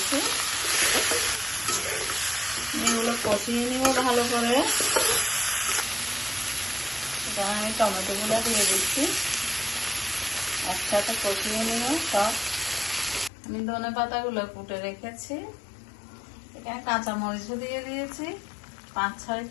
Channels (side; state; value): right; drops out; at 13.3 s